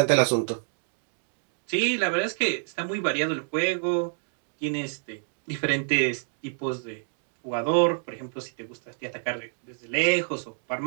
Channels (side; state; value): left; silent; digital silence